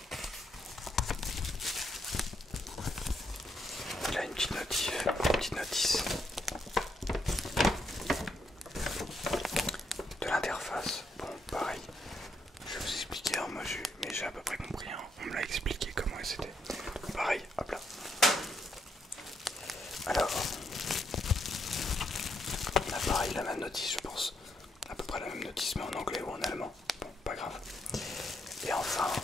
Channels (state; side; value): normal; both; correlation 0.77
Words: Il a une petite notice de l'interface. Bon, pareil. Je vais vous expliquer, hein, mais j'ai à peu près compris. Hein. On me l'a expliqué comment c'était. Pareil, hop là. Alors, on a pareil la même notice, je pense. À peu près la même notice, mais en anglais ou en allemand. Bon, pas grave. Et enfin,